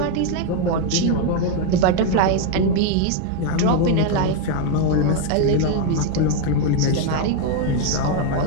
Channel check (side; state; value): both; different; correlation 0.01